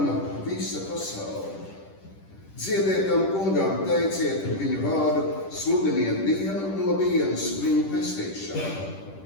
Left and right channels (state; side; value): late; right; 10 ms